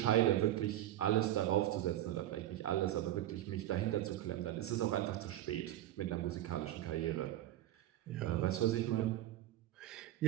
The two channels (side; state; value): left; quieter; 13.6 dB